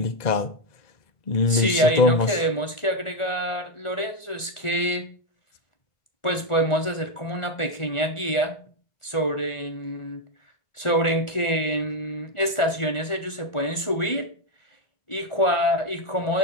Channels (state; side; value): late; right; 1.4 ms